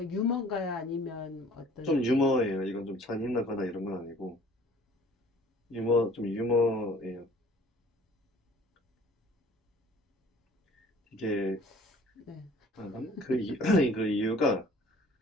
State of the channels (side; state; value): both; normal; correlation 0.52